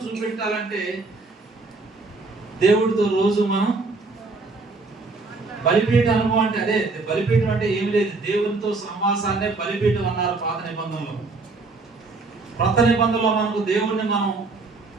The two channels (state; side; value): quieter; left; 3.7 dB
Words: చూపెట్టాలంటే దేవుడితో రోజు మనం బలిపీఠ అనుభవం అంటే అదే. బలిపీఠం అంటే ఏమి లేదు, దేవునితో సమాసాన్నే బలిపీఠం అన్నారు పాత నిబంధనలో. కొత్త నిబంధనలో మనకు దేవుణ్ణి మనం